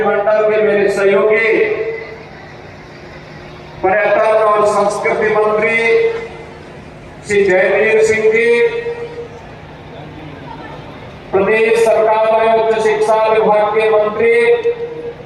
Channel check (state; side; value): identical; both; correlation 1.00